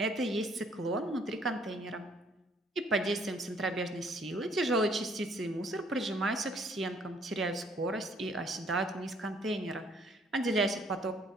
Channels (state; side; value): normal; both; correlation 0.63